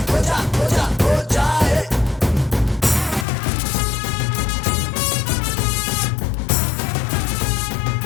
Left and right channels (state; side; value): drops out; right; at 3.2 s